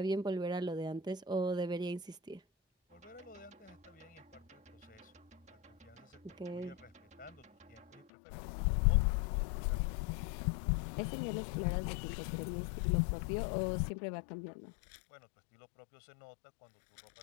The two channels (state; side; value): drops out; right; at 8.1 s